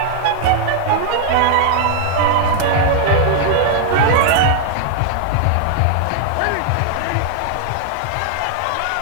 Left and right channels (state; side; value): different; both; correlation 0.00